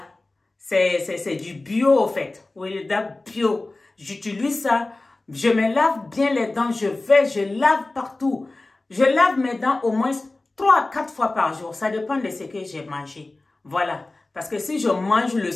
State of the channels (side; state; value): right; quieter; 3.0 dB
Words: C'est du bio, au fait. Oui, les dents bio. J'utilise ça. Je me lave bien les dents. Je lave partout. Je lave mes dents au moins 3 à 4 fois par jour. Ça dépend de ce que j'ai mangé. Voilà. Parce que si je mange le